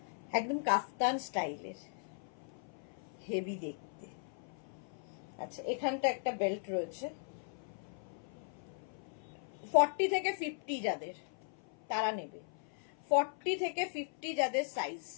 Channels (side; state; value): right; silent; 53 dB below the other